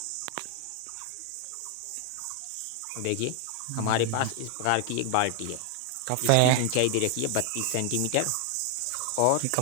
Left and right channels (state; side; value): different; both; correlation 0.00